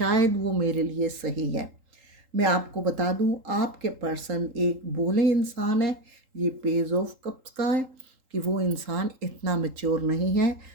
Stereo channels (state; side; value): late; left; 3.8 ms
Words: वो मेरे लिए सही है। मैं आपको बता दूं, आपके पर्सन एक भोले इंसान है। ये पेज ऑफ कप्स का है कि वो इंसान इतना मैच्योर नहीं है